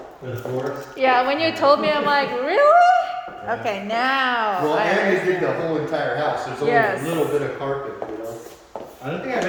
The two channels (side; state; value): both; identical; correlation 1.00